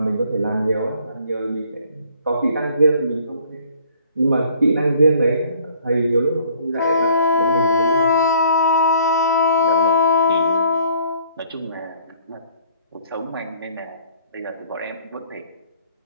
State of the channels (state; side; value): inverted; both; correlation -0.57